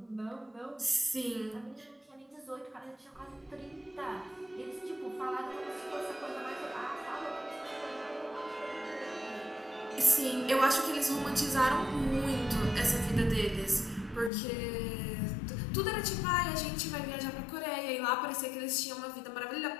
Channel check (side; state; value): right; drops out; at 14.3 s